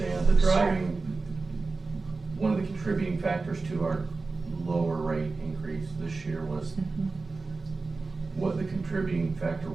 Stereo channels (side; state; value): left; quieter; 3.9 dB